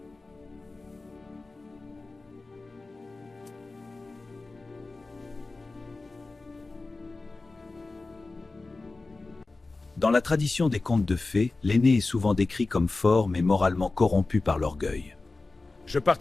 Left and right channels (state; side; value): quieter; right; 3.5 dB